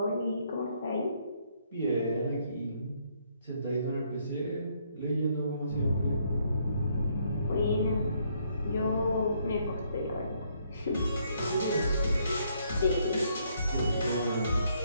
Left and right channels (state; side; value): inverted; both; correlation -0.70